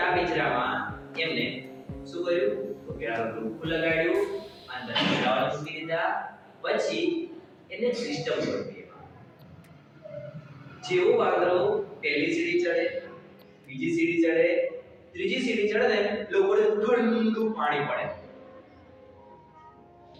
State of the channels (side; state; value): both; identical; correlation 1.00